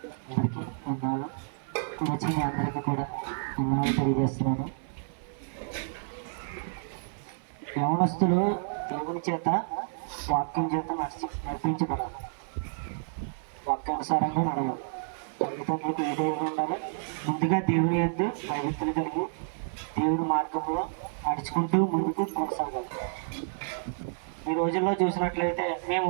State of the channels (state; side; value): silent; left; 58 dB below the other